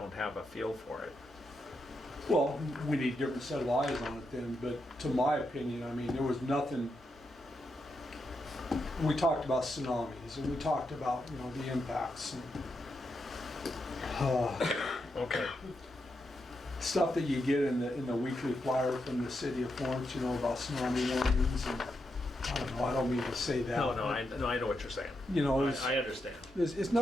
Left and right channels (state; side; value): normal; both; correlation 0.84